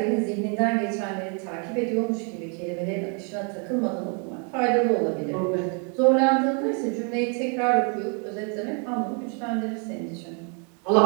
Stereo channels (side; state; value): left; quieter; 38.3 dB